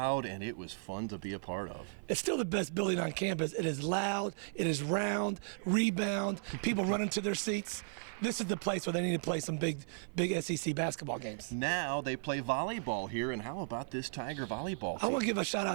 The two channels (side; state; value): left; silent; 54 dB below the other